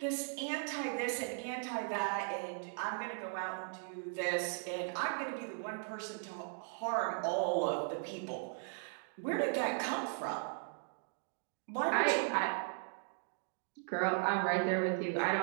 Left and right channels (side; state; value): left; silent; digital silence